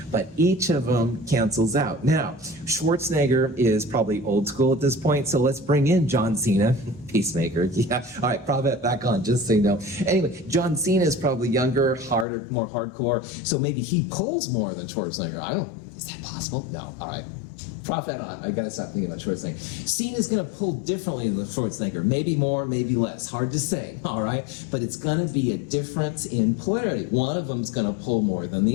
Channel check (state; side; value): drops out; right; at 12.2 s